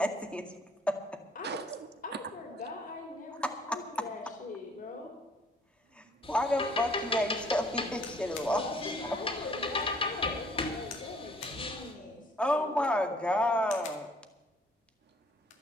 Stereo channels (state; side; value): normal; both; correlation 0.59